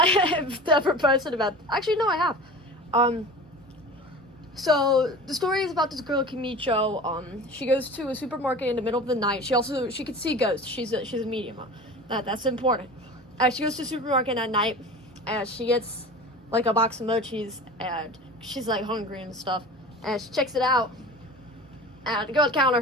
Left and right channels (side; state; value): both; normal; correlation 0.36